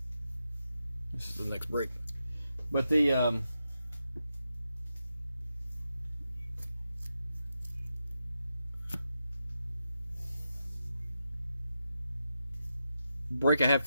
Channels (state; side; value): inverted; both; correlation -0.87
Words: this is the next break. But the break I have